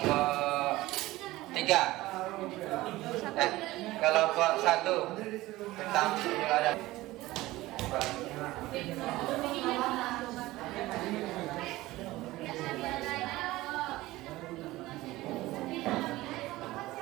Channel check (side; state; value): left; quieter; 18.1 dB